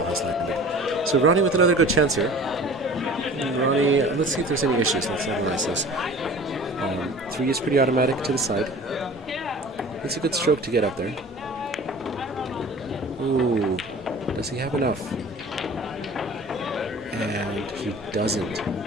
has landed. So Ronnie with another good chance here. Ronnie, let's see if there's any issues. Let's analyze this. 3 is pretty automatic to the side. It's a good stroke to get up there. Ooh, does he have enough? And he doesn't.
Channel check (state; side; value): normal; both; correlation 0.43